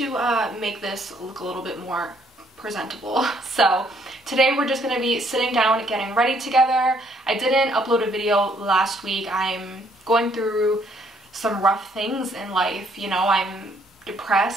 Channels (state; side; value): normal; both; correlation 0.67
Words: make this look a little bit more presentable. So today we're just going to be sitting down getting ready together. I didn't upload a video last week. I'm going through some rough things in life, you know. I'm